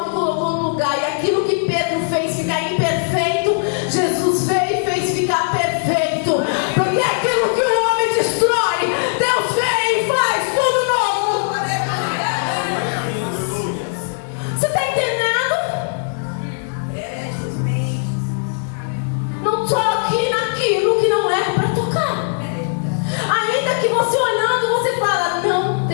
e colocou no lugar. E aquilo que Pedro fez ficar imperfeito, Jesus veio e fez ficar perfeito. Porque aquilo que o homem destrói, Deus vem e faz tudo novo. Você está entendendo? Não toque naquilo que não é para tocar. Ainda que você olhando, você fala: não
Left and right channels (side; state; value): right; silent; digital silence